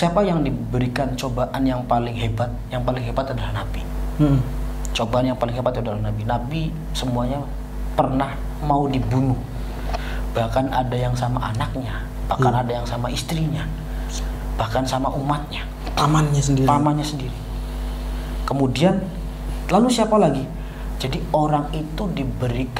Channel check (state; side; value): identical; both; correlation 1.00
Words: yang diberikan cobaan yang paling hebat adalah Nabi. Cobaan yang paling hebat adalah Nabi. Nabi semuanya pernah mau dibunuh. Bahkan ada yang sama anaknya, bahkan ada yang sama istrinya, bahkan sama umatnya. pamannya sendiri. Kemudian lalu siapa lagi? Jadi orang itu